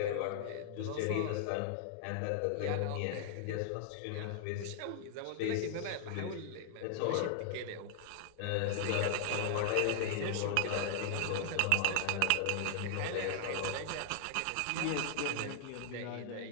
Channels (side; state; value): both; different; correlation -0.01